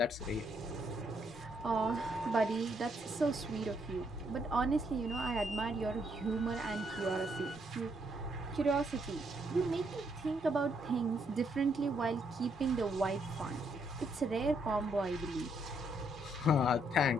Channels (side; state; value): both; normal; correlation 0.74